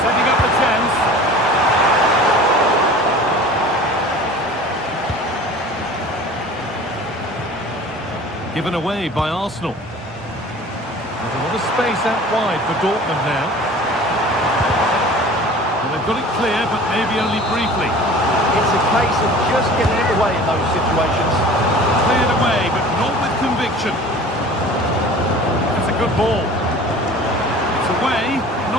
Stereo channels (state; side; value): normal; both; correlation 0.43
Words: Setting up the chance. Given away by Arsenal. There's a lot of space out wide for Dortmund now. And they've got it clear, but maybe only briefly. It's a case of just getting it away in those situations. Cleared away, but not with conviction. Good ball. It's away,